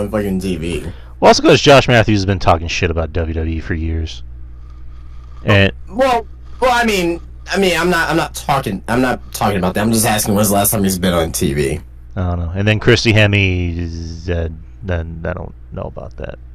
fucking TV? Well, also because Josh Matthews has been talking shit about WWE for years. And I'm not talking about that. I'm just asking when's the last time he's been on TV. I don't know. And then Christy Hemme, then I don't know about that.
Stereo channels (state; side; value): identical; both; correlation 1.00